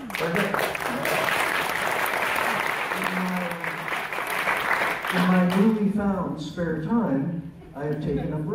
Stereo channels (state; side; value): identical; both; correlation 1.00